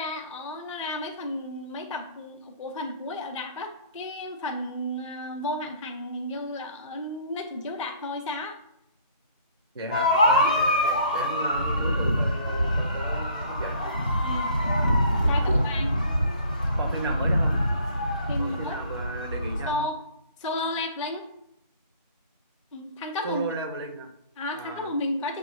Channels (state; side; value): inverted; both; correlation -0.55